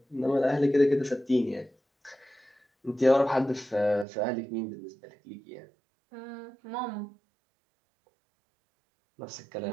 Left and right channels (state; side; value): drops out; left; at 4.0 s